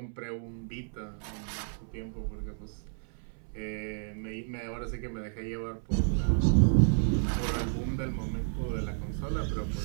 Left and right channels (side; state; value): left; silent; 57 dB below the other